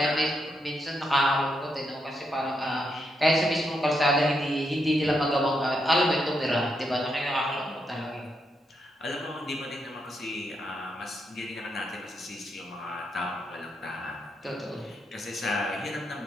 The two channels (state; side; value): normal; both; correlation 0.81